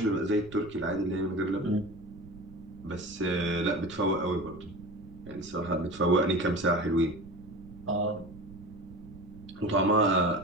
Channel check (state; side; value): noise; right; rumble, 18 dB below the sound